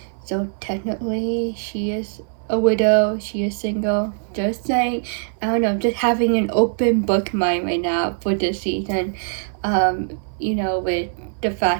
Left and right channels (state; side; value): silent; left; 60 dB below the other